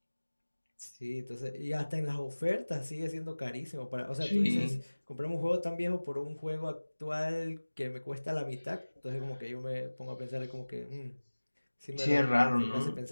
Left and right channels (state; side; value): inverted; both; correlation -1.00